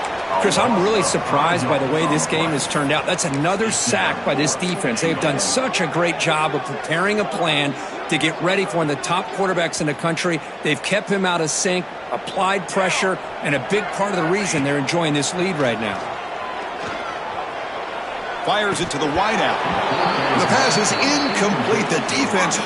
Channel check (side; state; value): both; identical; correlation 1.00